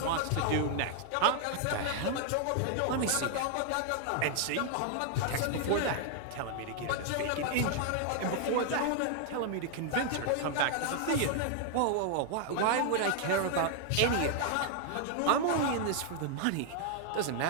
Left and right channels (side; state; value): both; different; correlation 0.00